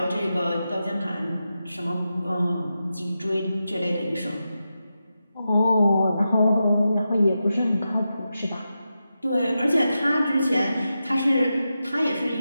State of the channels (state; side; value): inverted; both; correlation -0.89